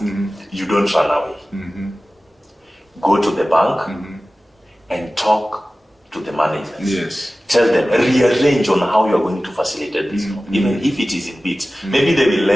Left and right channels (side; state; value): both; normal; correlation 0.96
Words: you don't run away. Go to the bank and talk to the managers. Yes. Tell them, rearrange on how you are going to facilitate this loan, even if it is in bits. Maybe they will